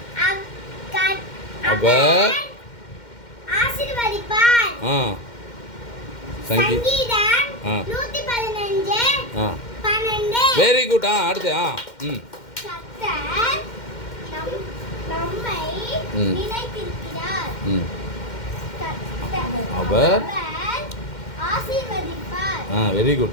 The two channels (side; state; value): right; late; 2.1 ms